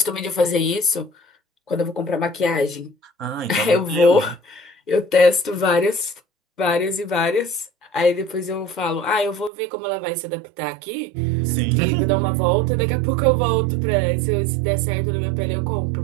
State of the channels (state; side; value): drops out; left; at 9.5 s